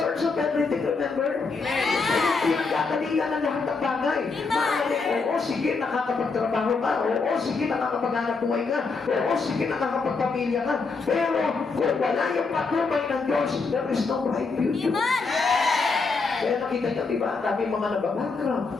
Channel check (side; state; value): right; quieter; 4.4 dB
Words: of everything, remember? Amen! Pinagkakalingan ng lahat ng bagay. Maaaring, oo, sige, nakakapagtrabaho ka. Oo, sige, nakakapaghanap buhay ka. Oo, sige, nakakapagpamilya ka. Pero kung wala yung patnubay ng Diyos, there is no bright future. Amen. Kaya nakita niyo, di ba, ang dami mga nababankrupt,